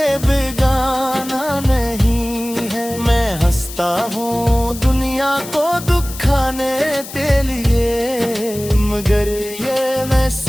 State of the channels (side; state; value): left; noise; hiss, 13 dB below the sound